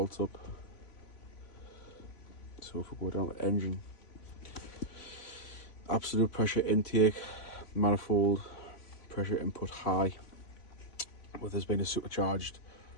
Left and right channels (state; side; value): late; right; 3.5 ms